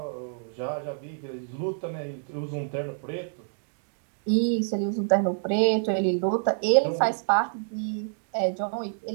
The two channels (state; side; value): silent; left; digital silence